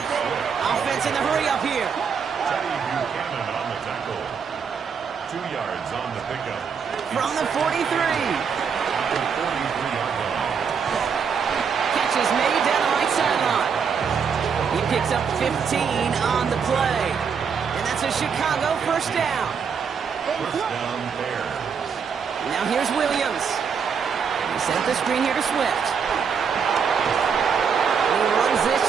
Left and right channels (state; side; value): quieter; left; 6.5 dB